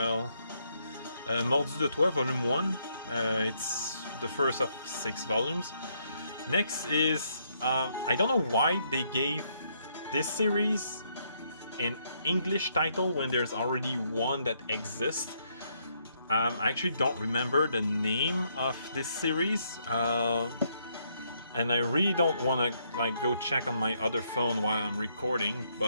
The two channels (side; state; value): both; inverted; correlation -0.73